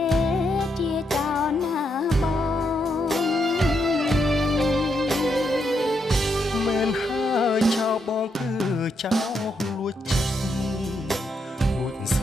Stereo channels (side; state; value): both; normal; correlation 0.79